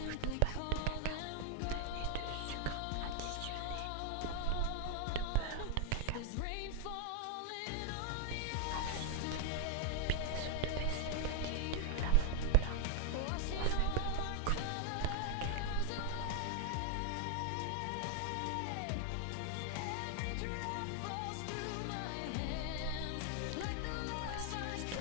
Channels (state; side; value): different; both; correlation 0.00